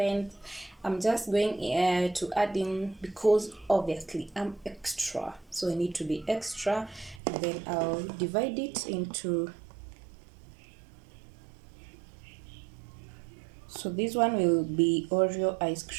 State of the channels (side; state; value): left; drops out; at 7.2 s